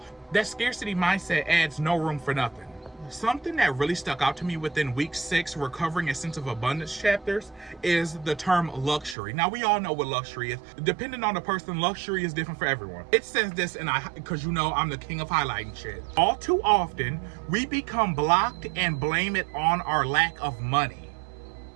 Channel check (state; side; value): drops out; left; at 9.2 s